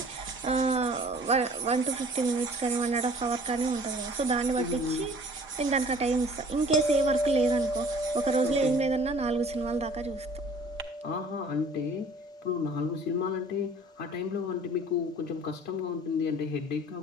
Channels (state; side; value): normal; both; correlation 0.51